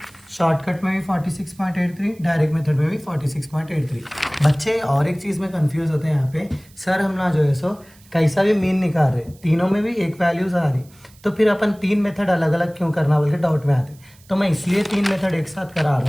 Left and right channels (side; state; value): right; noise; hiss, 27 dB below the sound